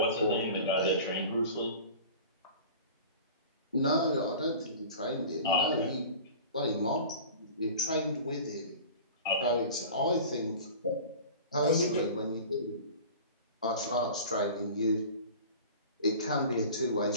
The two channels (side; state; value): both; inverted; correlation -0.39